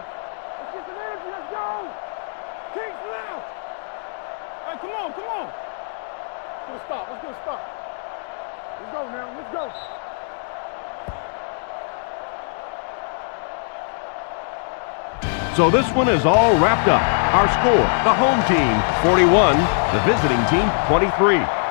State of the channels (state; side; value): silent; right; digital silence